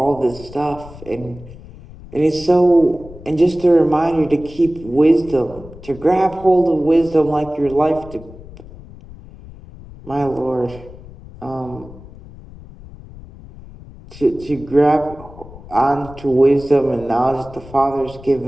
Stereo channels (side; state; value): left; noise; rumble, 18 dB below the sound